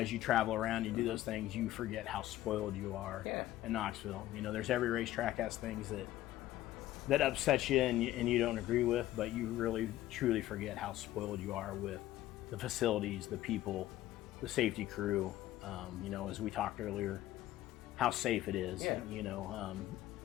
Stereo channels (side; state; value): right; quieter; 14.6 dB